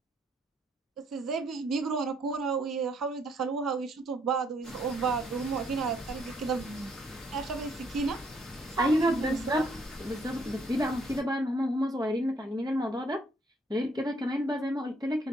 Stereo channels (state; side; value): normal; both; correlation 0.68